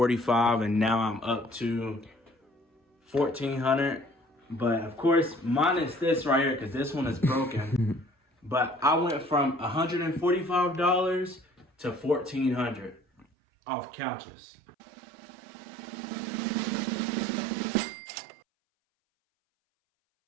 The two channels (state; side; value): drops out; left; at 13.2 s